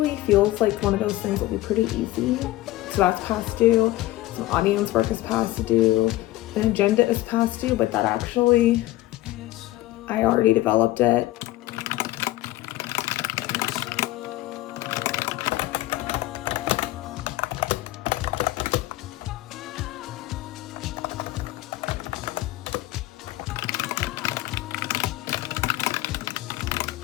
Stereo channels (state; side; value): quieter; right; 16.9 dB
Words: feels like one of those things that will be pretty easy. So that's past due. Some audience work is past due. An agenda is past due, but that actually, I already developed it.